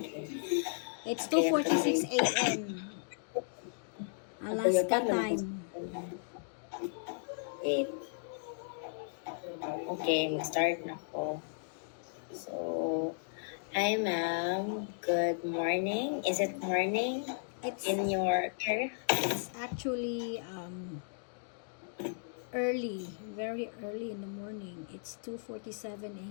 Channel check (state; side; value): silent; right; digital silence